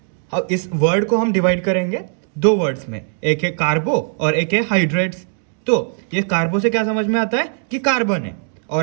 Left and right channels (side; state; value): left; silent; digital silence